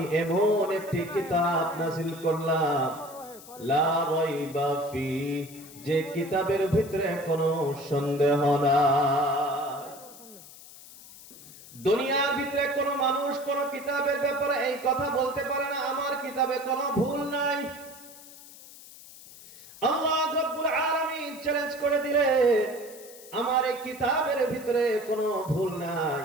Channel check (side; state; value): left; noise; hiss, 18 dB below the sound